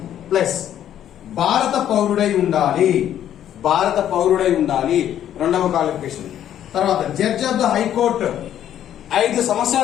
ప్లస్ భారత పౌరుడై ఉండాలి. భారత పౌరుడై ఉండాలి రెండవ క్వాలిఫికేషన్. తర్వాత జడ్జ్ ఆఫ్ ద హైకోర్టు 5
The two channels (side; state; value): right; quieter; 10.8 dB